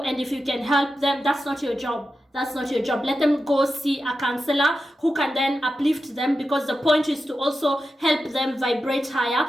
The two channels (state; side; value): normal; both; correlation 0.91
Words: if you can help them, that's not your job. That's not your job. Let them go see a counselor who can then uplift them, because the point is to also help them vibrate higher,